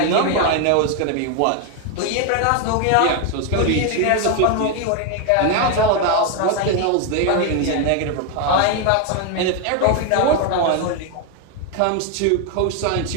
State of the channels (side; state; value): both; different; correlation 0.01